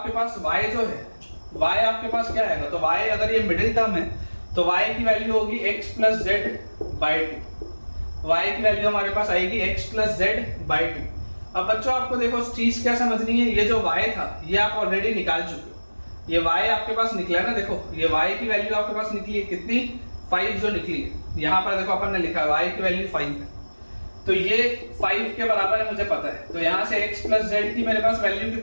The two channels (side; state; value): both; inverted; correlation -1.00